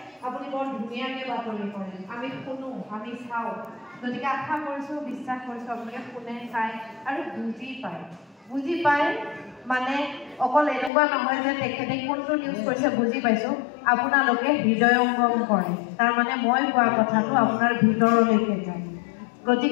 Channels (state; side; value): drops out; right; at 10.9 s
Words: আপুনি বৰ ধুনীয়াকৈ বাতৰি কৰে আমি শুনো আমি চাওঁ গতিকে আশা কৰিছোঁ বিশ্বাস কৰিছোঁ আপোনালোকে শুনে চায় আৰু বুজি পায় মানে অকল এনেকুৱা নহয় যে তেখেতে কোনটো নিউজ কৰিছে বুজি পাইছোঁ আপোনালোকে হৃদয়ঙ্গম কৰে তাৰমানে মই কোৱা কথাটো আপোনাৰ ভিতৰলৈকে যায়